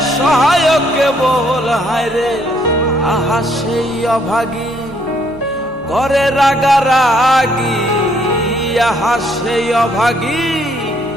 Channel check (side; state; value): both; normal; correlation 0.68